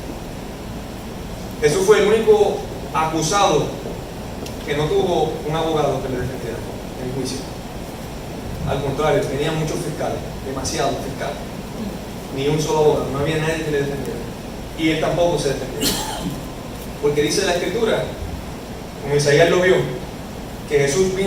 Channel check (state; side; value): identical; both; correlation 1.00